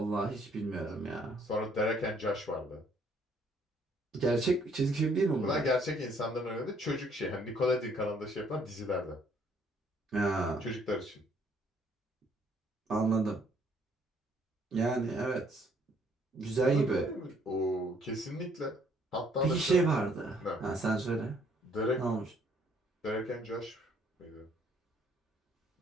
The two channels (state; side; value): normal; both; correlation 0.64